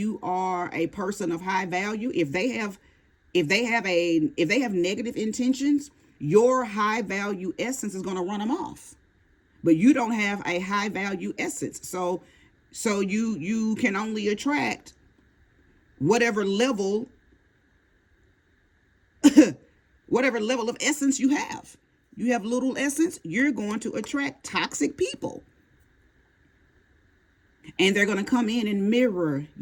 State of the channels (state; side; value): identical; both; correlation 1.00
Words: are a person of high value, if they have negative intentions, your high value essence is going to run them off. But you don't have a high value essence, so you can only attract whatever level whatever level of essence you have. You have little essence, you're going to attract toxic people. And they're going to come in and mirror